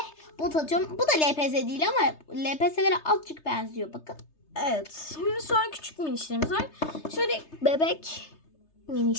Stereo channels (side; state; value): right; late; 3.3 ms